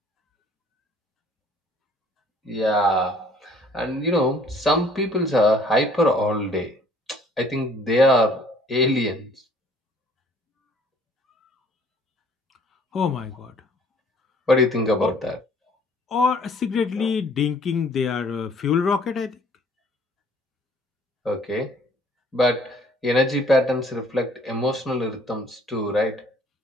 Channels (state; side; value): normal; both; correlation 0.57